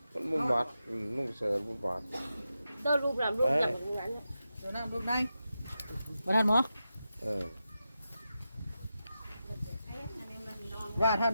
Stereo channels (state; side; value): inverted; both; correlation -0.90